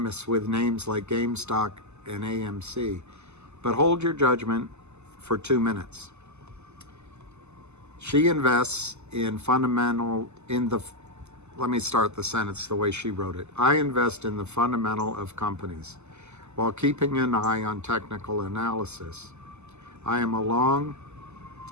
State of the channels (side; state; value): left; late; 0.82 ms